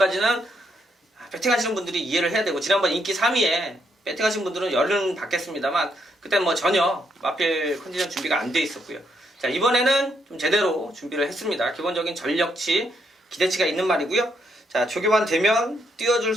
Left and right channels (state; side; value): normal; both; correlation 0.76